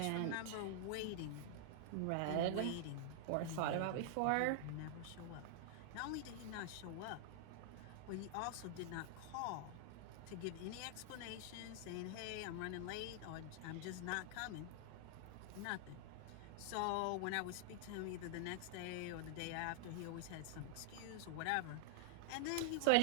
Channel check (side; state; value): both; different; correlation -0.01